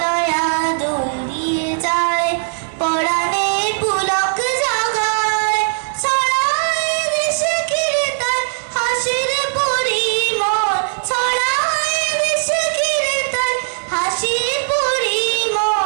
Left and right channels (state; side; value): silent; left; digital silence